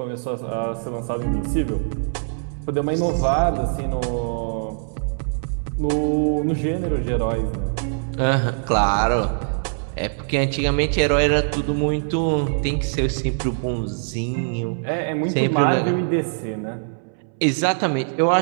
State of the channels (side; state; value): left; silent; 64 dB below the other